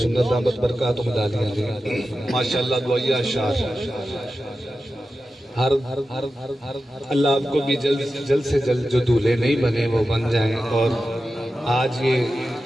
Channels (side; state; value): both; normal; correlation 0.92